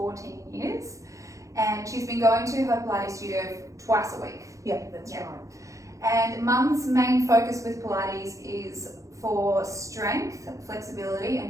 years. And she's been going to her Pilates studio twice a week. Yeah, that's right. And Mum's main focus with Pilates is for strength, flexibility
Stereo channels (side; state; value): left; late; 0.15 ms